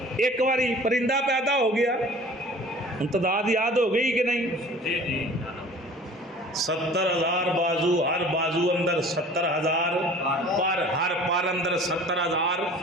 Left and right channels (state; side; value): normal; both; correlation 0.46